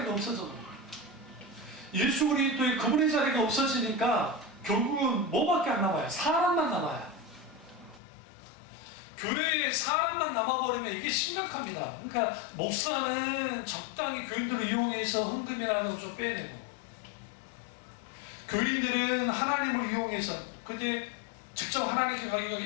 없어져. 예수 그리스도의 그분의 자리가 없어지니까 결국은 뭐밖에 안 남아요? 사람만 남아요. 교회에 사람만 남아버리면 이게 심각합니다. 그러니까 목사는 적당히 교인들을 이용해서 헌금이라는 걸 좀 빼내고 교인들은 하나님을 이용해서 근데 직접 하나님께 가기가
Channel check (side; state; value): right; drops out; at 8.0 s